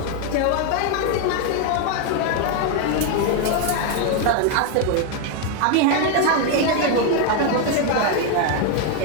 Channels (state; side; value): different; both; correlation 0.01